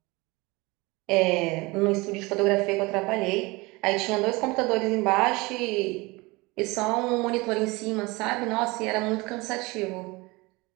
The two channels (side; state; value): left; quieter; 23.9 dB